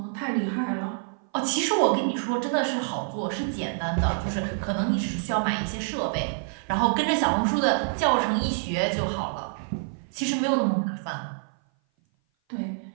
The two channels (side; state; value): left; silent; 56 dB below the other